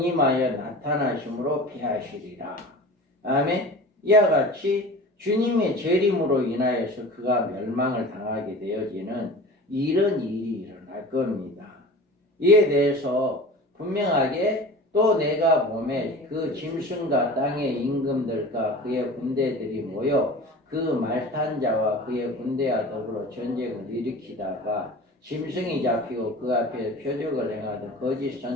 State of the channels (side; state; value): both; normal; correlation 0.37